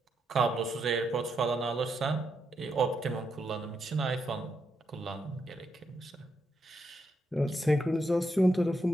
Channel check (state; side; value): normal; both; correlation 0.81